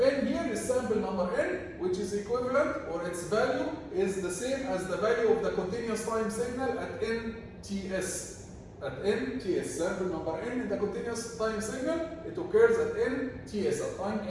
here is sample number n, which is equivalent, or its value is the same as the value of the continuous time signal at nts. At nts, sample number n in the continuous time signal, it occurs at nts, at time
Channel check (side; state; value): both; identical; correlation 1.00